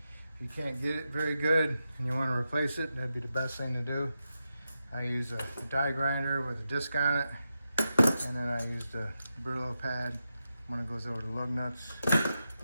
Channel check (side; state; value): both; inverted; correlation -0.88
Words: If you can't get it very good and you want to replace it, that'd be the best thing to do. I use a die grinder with a disc on it, and then I use the Brillo pad when it goes over the lug nuts.